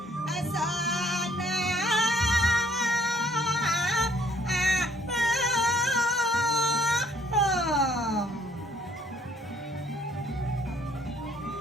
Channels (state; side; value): normal; both; correlation 0.62